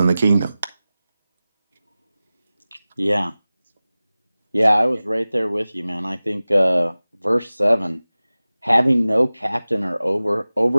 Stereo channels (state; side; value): inverted; both; correlation -0.97